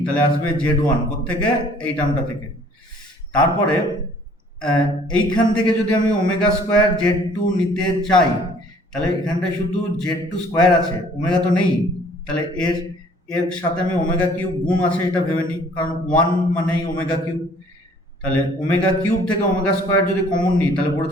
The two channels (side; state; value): both; normal; correlation 0.55